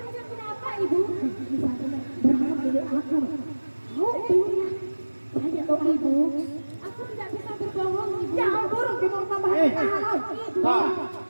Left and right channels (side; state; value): both; inverted; correlation -1.00